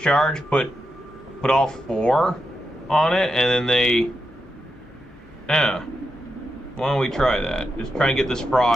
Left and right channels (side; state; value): both; normal; correlation 0.86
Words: put all 4 on it, and then they... Yeah. Why don't we try that? Just try and get this